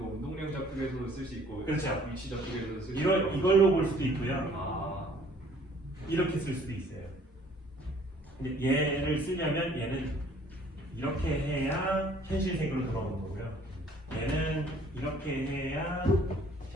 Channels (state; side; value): normal; both; correlation 0.57